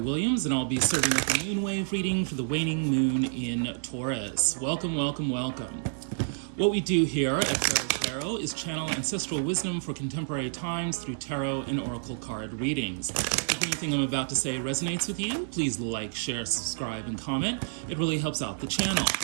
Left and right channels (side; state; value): left; silent; digital silence